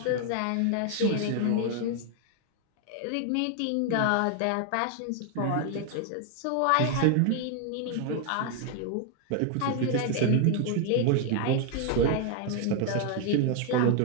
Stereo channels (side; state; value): both; different; correlation 0.00